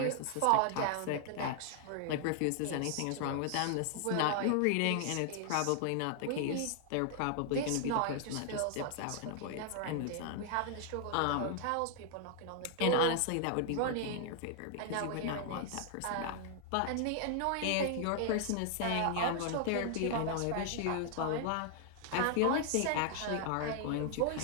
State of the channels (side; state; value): both; different; correlation 0.00